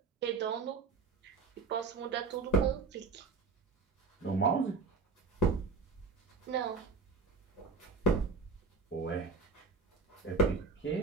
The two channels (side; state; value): left; quieter; 4.4 dB